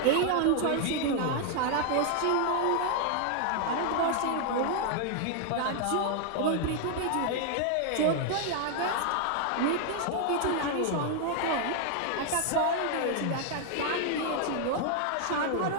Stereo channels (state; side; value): different; both; correlation 0.00